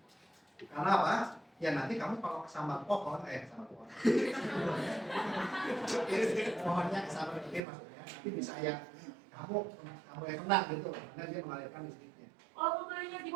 Karena apa? Ya nanti kamu kalau kesambar pohon, kesambar pohon. Pohonnya kesambar petir maksudnya. Nanti bisa yang kamu yang kena gitu, karena dia mengalirkan listriknya. Kalau mobilnya di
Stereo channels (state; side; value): drops out; left; at 7.6 s